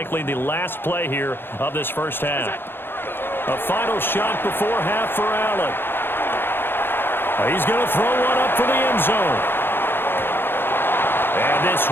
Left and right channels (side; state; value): right; late; 0.10 ms